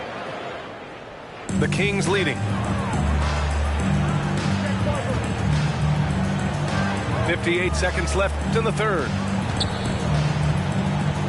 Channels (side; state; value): both; identical; correlation 1.00